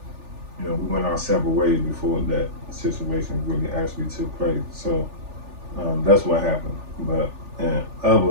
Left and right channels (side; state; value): left; late; 3.4 ms